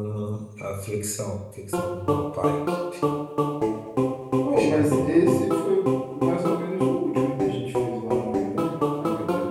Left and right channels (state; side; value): identical; both; correlation 1.00